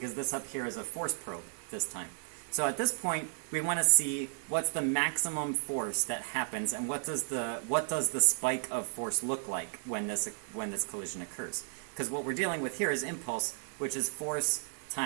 this up here is a force probe this time. So at this point, we want to see what's the maximum force that happens, and what does the spike of force look like when this collision occurs? Because what we're dealing with here is impulse, which is force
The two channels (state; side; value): silent; left; digital silence